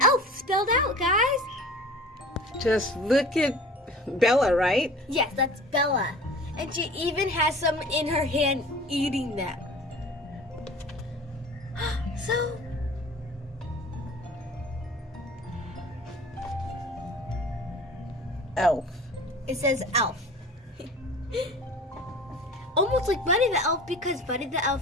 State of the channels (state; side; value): normal; both; correlation 0.41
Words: elf spelled out, guys. Just look at Bella, right? Yes, that's Bella. And she even has some in her hand eating them. So, Elf. it says elf. Almost like Buddy the Elf because Buddy the